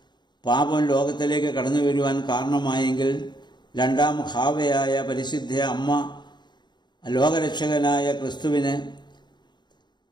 പാപം ലോകത്തിലേക്ക് കടന്നു വരുവാൻ കാരണമായെങ്കിൽ രണ്ടാം ഹാവയായ പരിശുദ്ധ അമ്മ ലോകരക്ഷകനായ ക്രിസ്തുവിന്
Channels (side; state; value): right; late; 0.21 ms